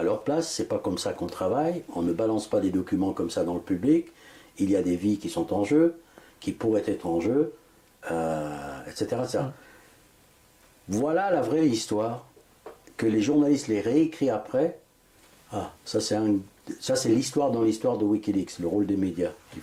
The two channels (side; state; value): both; identical; correlation 1.00